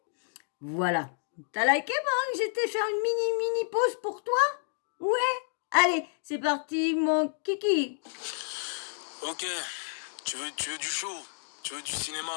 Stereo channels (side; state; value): right; silent; digital silence